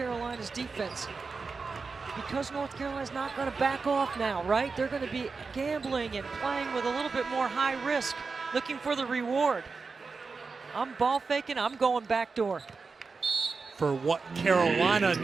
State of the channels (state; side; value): quieter; left; 4.6 dB